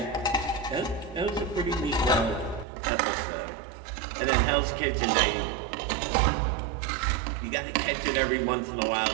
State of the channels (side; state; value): left; drops out; at 2.7 s